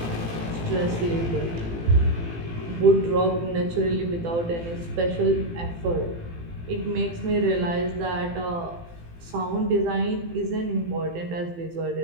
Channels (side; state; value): left; late; 18 ms